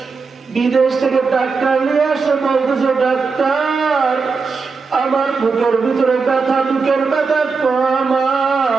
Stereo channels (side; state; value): left; quieter; 4.7 dB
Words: বিদেশ থেকে ডাক্তার নিয়ে আসে, বলতেছে ডাক্তার আমার বুকের ভিতরে ব্যথা, বুকের ব্যথা কমা,